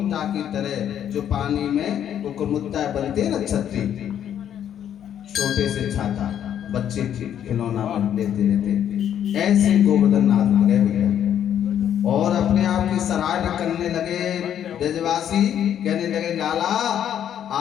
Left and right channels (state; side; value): quieter; right; 9.8 dB